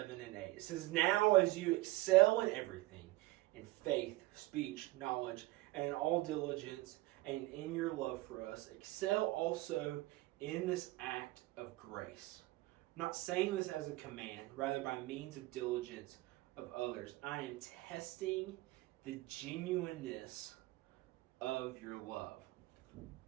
and 8. It says, "Now as you excel in everything, in faith, speech, knowledge, and in all diligence, and in your love for us, excel also in this act of grace." I'm not saying this as a command, rather by means of diligence of others. I am testing the genuineness of your love.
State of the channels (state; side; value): quieter; left; 19.6 dB